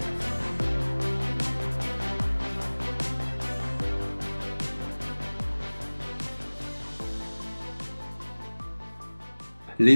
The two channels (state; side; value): inverted; both; correlation -1.00